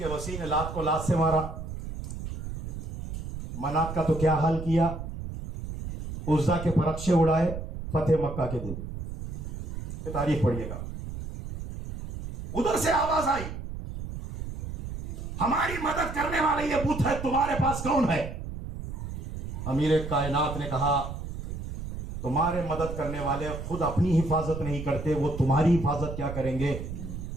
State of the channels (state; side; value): noise; right; rumble, 7 dB below the sound